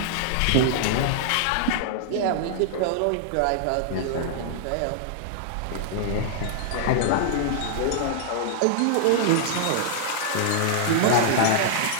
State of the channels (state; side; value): different; both; correlation -0.01